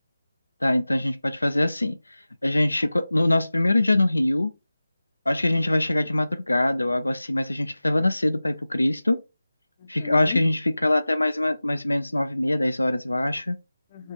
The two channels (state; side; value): inverted; both; correlation -0.97